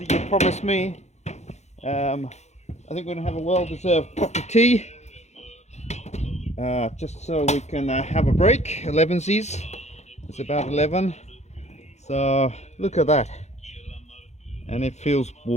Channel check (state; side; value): late; right; 0.33 ms